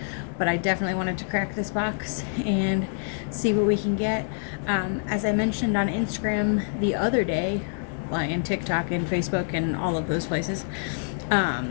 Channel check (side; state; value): right; silent; digital silence